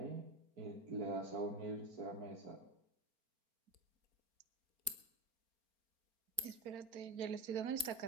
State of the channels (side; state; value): left; late; 4.4 ms